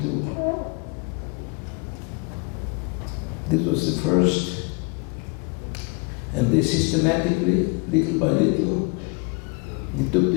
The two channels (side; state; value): right; quieter; 32.3 dB